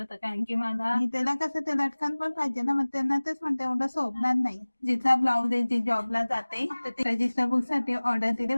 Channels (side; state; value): both; inverted; correlation -1.00